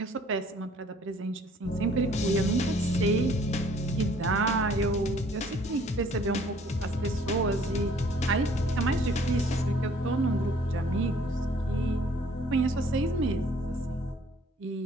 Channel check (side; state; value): both; normal; correlation 0.58